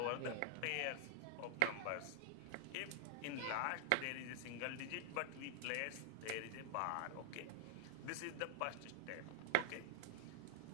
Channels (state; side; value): different; both; correlation 0.00